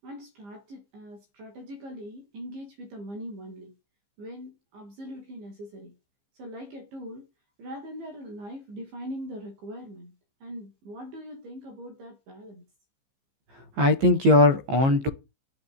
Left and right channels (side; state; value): left; late; 15 ms